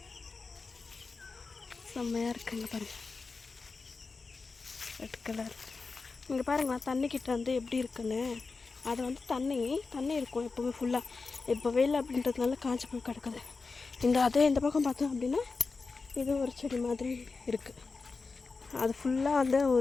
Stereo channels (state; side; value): quieter; right; 4.3 dB